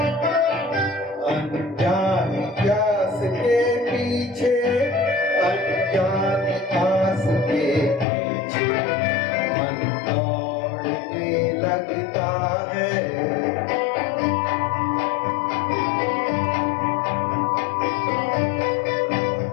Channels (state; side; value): drops out; right; at 8.1 s